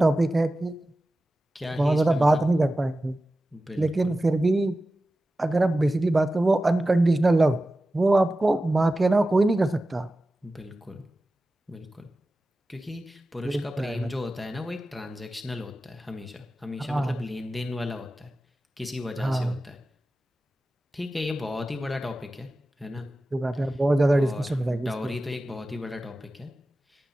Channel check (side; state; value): both; normal; correlation 0.95